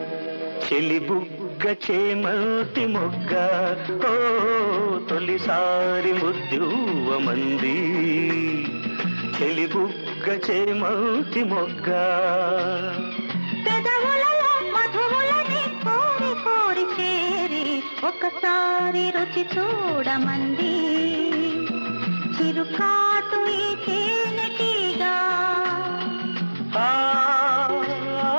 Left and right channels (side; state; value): both; inverted; correlation -1.00